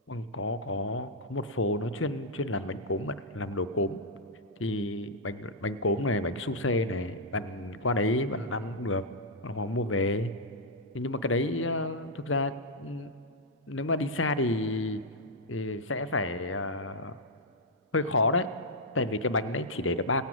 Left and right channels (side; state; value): both; normal; correlation -0.05